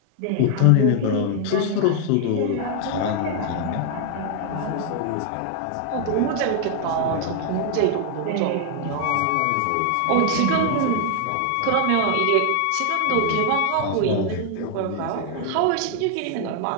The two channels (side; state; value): both; different; correlation 0.00